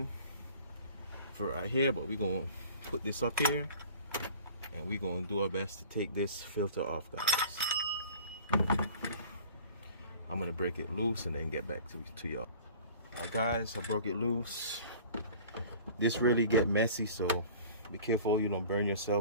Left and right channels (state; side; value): inverted; both; correlation -0.45